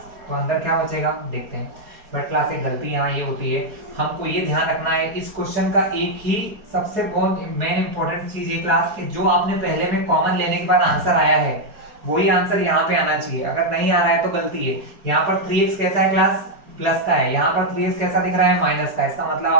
तो अंदर क्या बचेगा देखते हैं। बट क्लास एक गलती यहाँ ये होती है, हमको ये ध्यान रखना है इस क्वेश्चन का एक ही सबसे बहुत मेन इंपॉर्टेंट चीज ये क्लास कि जो आपने पहले में कॉमन लेने के बाद आंसर आया है वही आंसर यहाँ पे आना चाहिए। अगर नहीं आ रहा है तो गलती है। यहाँ पर 3x कैसा है क्लास, प्लस का है, यहाँ पर 3x कैसा दिख रहा है, माइनस का। इसका मतलब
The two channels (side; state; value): left; late; 4.7 ms